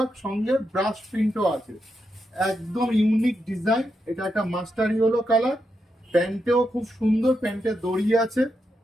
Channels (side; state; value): both; normal; correlation 0.85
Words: সঙ্গে ব্রাশ প্রিন্টও আছে, একদম ইউনিক ডিজাইন। এটা একটা মাস্টার ইয়েলো কালার। প্যান্টেও খুব সুন্দর, প্যান্টে দড়ি আছে